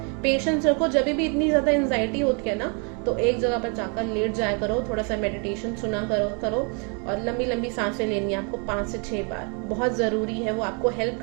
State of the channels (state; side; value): quieter; left; 36.6 dB